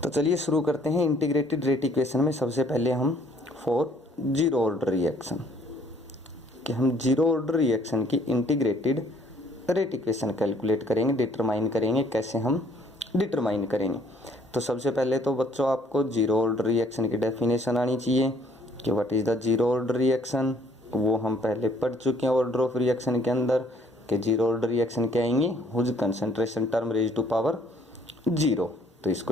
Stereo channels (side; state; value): both; normal; correlation 0.62